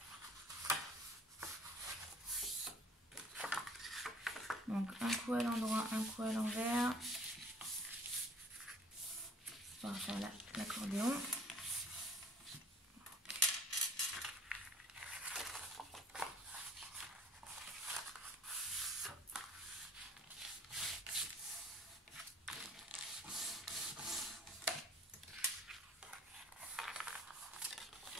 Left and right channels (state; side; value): normal; both; correlation 0.55